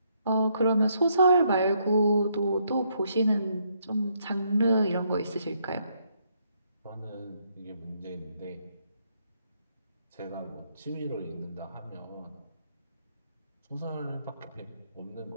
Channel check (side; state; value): both; inverted; correlation -0.73